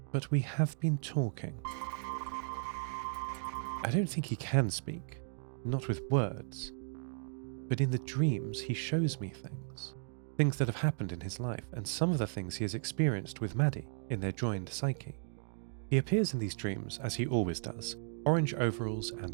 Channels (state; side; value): silent; left; digital silence